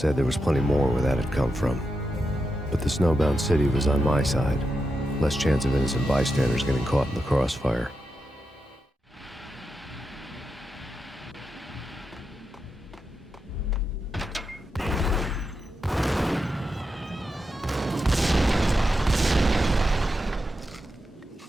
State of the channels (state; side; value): normal; both; correlation 0.87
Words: there was plenty more where that had come from. But the snowbound city was on my side. Less chance of innocent bystanders getting caught in the crossfire.